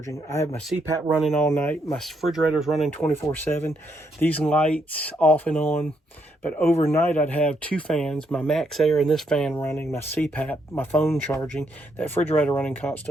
I have my CPAP running all night. My refrigerator's running 24/7. These lights off and on. But overnight I'd have two fans, my Max Air and this fan running, my CPAP, my phone charging, that refrigerator running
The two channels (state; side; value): normal; both; correlation 0.76